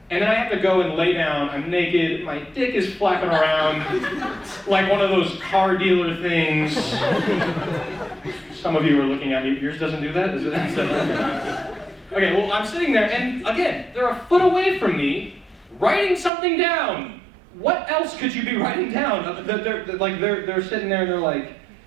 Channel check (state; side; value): drops out; left; at 16.3 s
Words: And then I have to go and lay down, I'm naked, my dick is flapping around like one of those car dealer things. Some of you are looking at me, yours doesn't do that? Is it? Okay, well, I'm sitting there, and again, they're a foot away from me, writing something down. What else could you be writing down? They're sitting there and they're like,